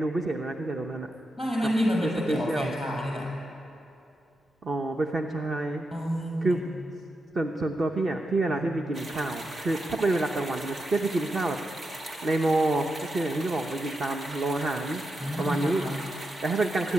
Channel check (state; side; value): normal; both; correlation 0.87